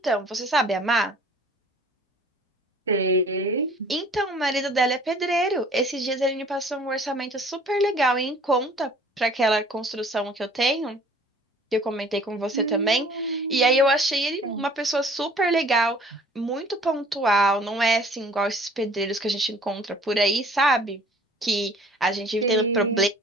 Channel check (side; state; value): both; normal; correlation 0.52